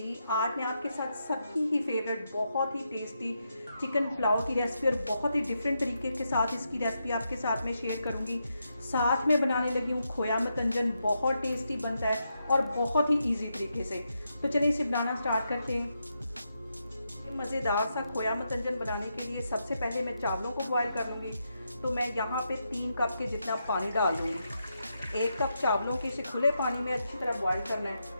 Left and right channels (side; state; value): both; inverted; correlation -0.84